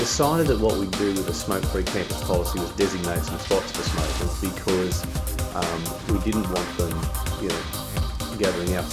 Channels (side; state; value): both; identical; correlation 1.00